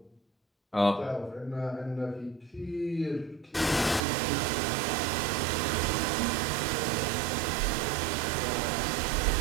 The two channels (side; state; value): left; drops out; at 4.0 s